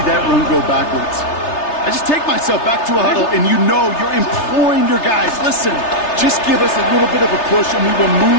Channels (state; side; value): late; right; 3.3 ms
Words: that run go backwards. I just take myself back to a huddle, and you know you're imploring your guys, listen, just give us a little bit of a push, and we will